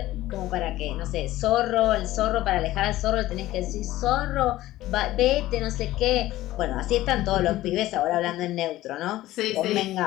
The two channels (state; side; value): quieter; right; 15.8 dB